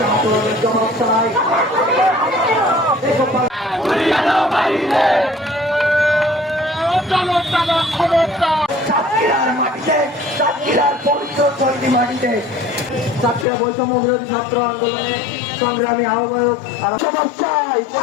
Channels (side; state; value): right; drops out; at 13.5 s